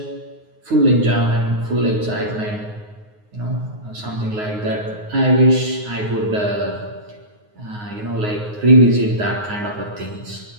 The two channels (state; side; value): late; left; 9.5 ms